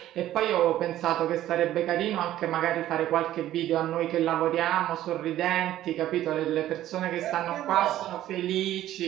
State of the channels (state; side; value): quieter; left; 13.3 dB